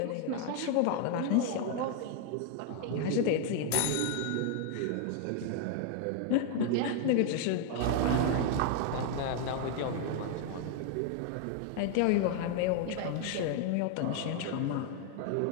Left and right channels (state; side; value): different; both; correlation 0.00